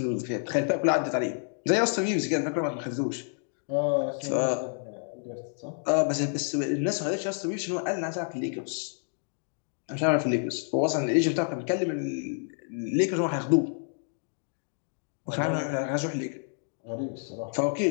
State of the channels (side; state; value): right; silent; 59 dB below the other